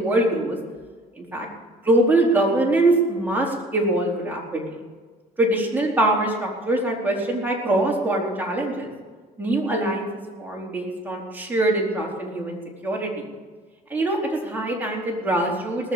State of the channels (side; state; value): both; normal; correlation 0.50